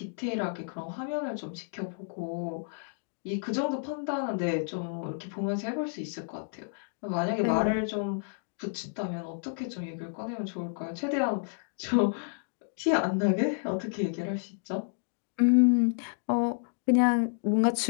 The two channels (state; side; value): silent; right; digital silence